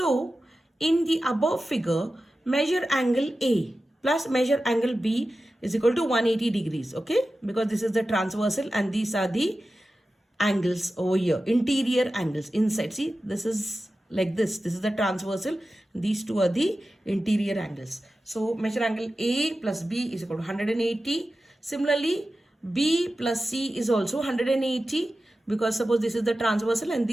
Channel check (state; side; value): normal; both; correlation 0.93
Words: in the above figure, measure angle A plus measure angle B is equal to 180 degrees. Okay, because this is the transversal and these are the angles over here, interior angles inside. See, this is like this is the transversal, these two are the interior angles. So measure angle A plus B is equal to 180. Similarly, B plus C is also 180 because suppose this is the transversal and